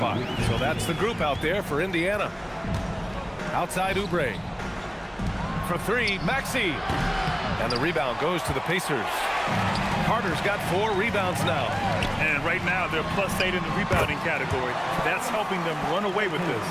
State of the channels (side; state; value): both; identical; correlation 1.00